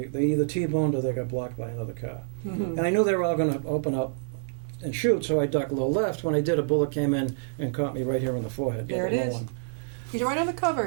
either T-boned or they got blocked by another car. And I knew they were all going to open up and shoot, so I ducked low left. When I did, a bullet came in and caught me right here in the forehead. There it the low is. one. He's right on the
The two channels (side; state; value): left; silent; digital silence